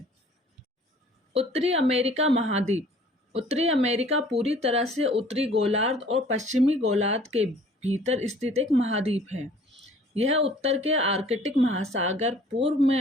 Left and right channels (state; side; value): normal; both; correlation 0.53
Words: उत्तरी अमेरिका महाद्वीप। उत्तरी अमेरिका पूरी तरह से उत्तरी गोलार्ध और पश्चिमी गोलार्ध के भीतर स्थित एक महाद्वीप है। यह उत्तर के आर्कटिक महासागर, पूर्व में